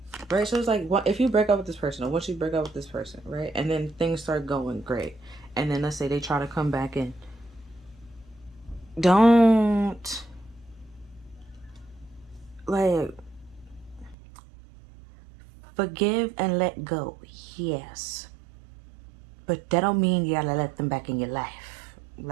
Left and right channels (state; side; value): drops out; left; at 14.2 s